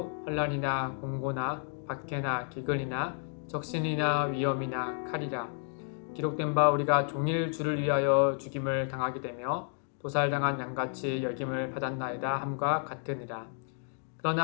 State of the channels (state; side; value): silent; right; 57 dB below the other